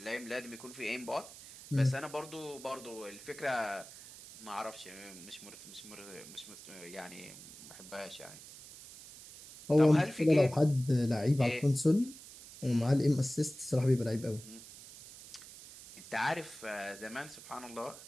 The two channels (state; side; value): noise; right; hiss, 16 dB below the sound